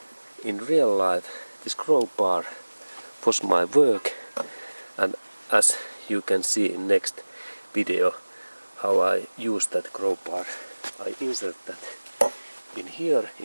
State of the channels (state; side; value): inverted; both; correlation -1.00